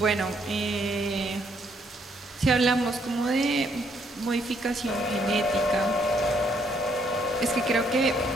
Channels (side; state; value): both; normal; correlation 0.70